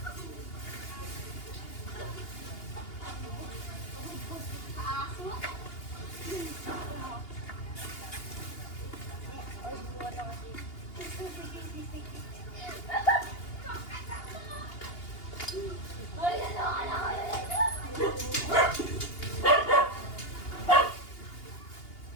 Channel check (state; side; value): late; right; 2.8 ms